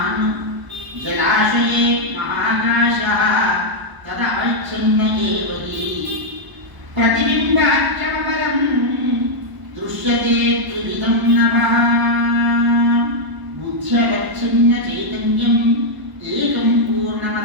జలాశయే మహాకాశః తదవచ్ఛిన్న ఏవ హి ప్రతిబింబాఖ్యమపరం దృశ్యతే త్రివిధం నభః బుద్ధ్యవచ్ఛిన్న చైతన్యం ఏకం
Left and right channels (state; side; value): late; left; 1.0 ms